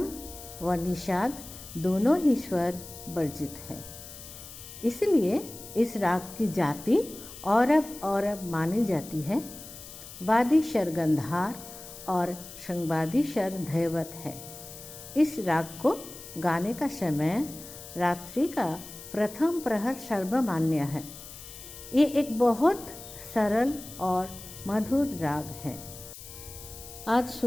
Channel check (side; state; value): left; noise; hiss, 14 dB below the sound